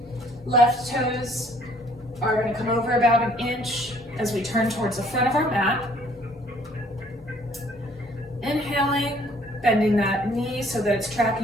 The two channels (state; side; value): normal; both; correlation 0.60